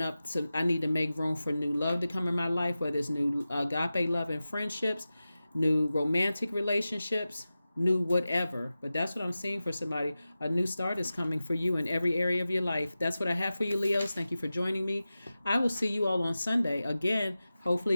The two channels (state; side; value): inverted; both; correlation -0.95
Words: up to, I need to make room for new love to come in my life, whether it's new agape love and friendships, new romantic relationships, new whatever. But that's what I'm seeing for somebody. A new start is coming for you in every area of your life. That's what I have for you, Leos. Thank you for joining me. I will see you all on Sunday. Again, hopefully